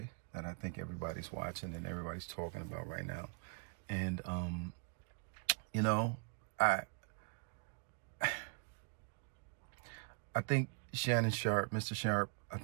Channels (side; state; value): left; quieter; 37.5 dB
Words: that I think everybody's watching and everybody's talking about right now. And you know, I I think Shannon Sharp, Mr. Sharp, I